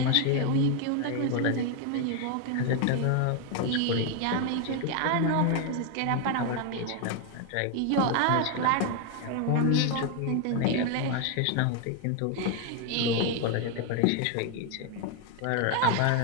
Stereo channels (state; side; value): different; both; correlation 0.01